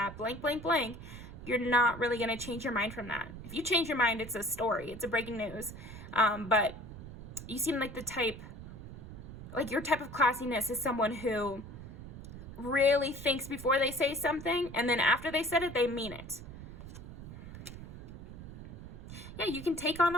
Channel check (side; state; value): right; noise; rumble, 12 dB below the sound